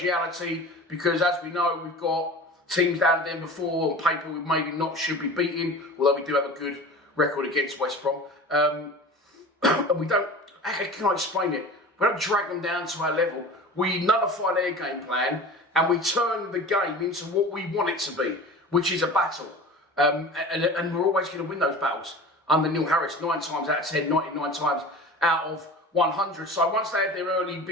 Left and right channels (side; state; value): both; normal; correlation 0.37